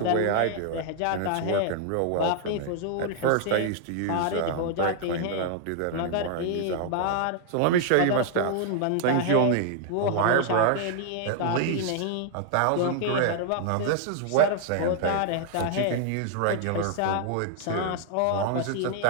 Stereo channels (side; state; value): both; different; correlation 0.00